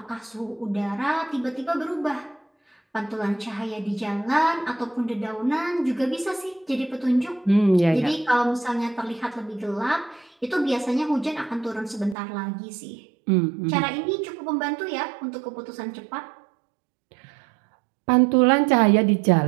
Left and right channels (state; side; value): drops out; left; at 12.2 s